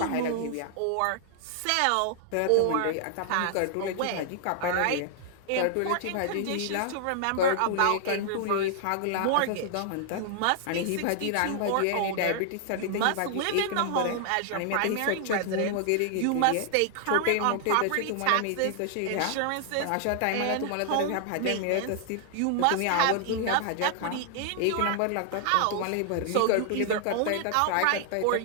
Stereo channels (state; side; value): different; both; correlation -0.01